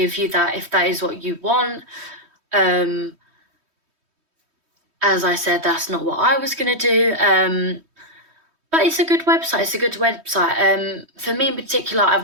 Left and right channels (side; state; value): left; late; 3.2 ms